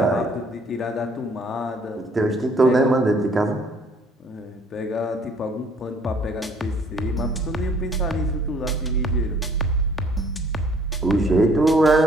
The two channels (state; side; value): normal; both; correlation 0.59